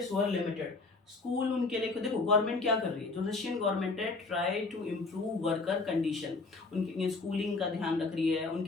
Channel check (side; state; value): right; quieter; 3.7 dB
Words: were limited, school उनके लिए, देखो गवर्नमेंट क्या कर रही है, जो रशियन गवर्नमेंट है, try to improve worker condition, उनकी स्कूलिंग का ध्यान रख रही है,